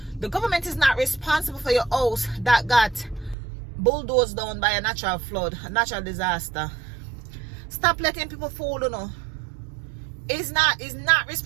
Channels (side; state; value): left; drops out; at 3.4 s